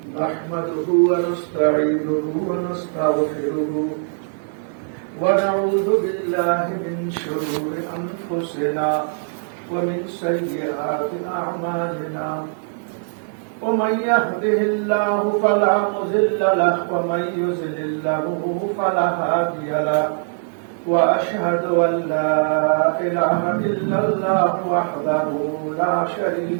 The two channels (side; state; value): left; silent; 65 dB below the other